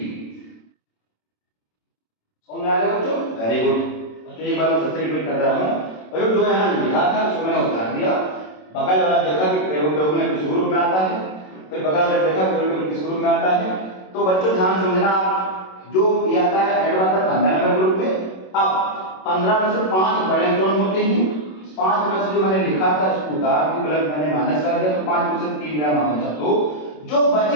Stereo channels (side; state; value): right; late; 27 ms